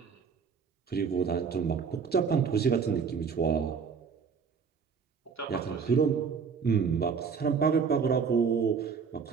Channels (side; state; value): left; quieter; 6.0 dB